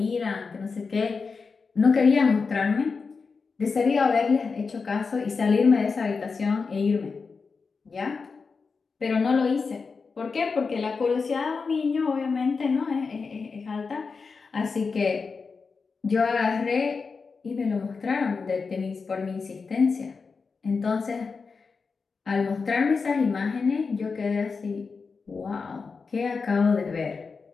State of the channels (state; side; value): quieter; right; 4.8 dB